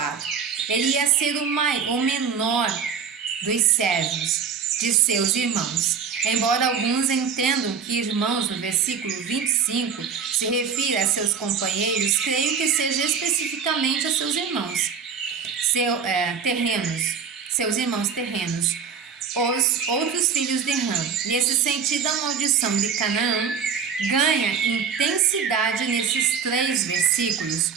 Ele ia ser o menor dos servos de seus irmãos. Embora alguns entendam que irmãos no versículo 25 se refira a seus companheiros, creio que seja especificamente a seus irmãos seus irmãos terrenos, os outros filhos de Ham. Nesse sentido, a maldição de Canaã ganha intensidade nesses 3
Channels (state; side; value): quieter; left; 6.5 dB